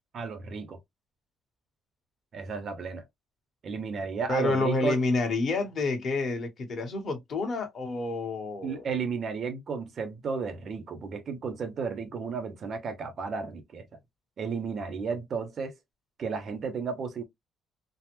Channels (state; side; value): normal; both; correlation 0.67